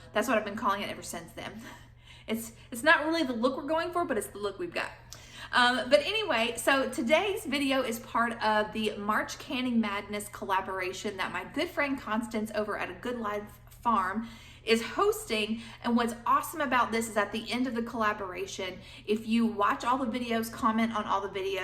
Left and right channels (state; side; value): identical; both; correlation 1.00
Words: that's what I've been calling it ever since then. It's not really the look we're going for, but it's the look we've got. But anyway, so today's video is part of the March Canning Madness collaboration that my good friend Constance over at A Good Life Farm is hosting. And what's awesome about this is at the end of the collaboration, if you watch all the videos, comment on all the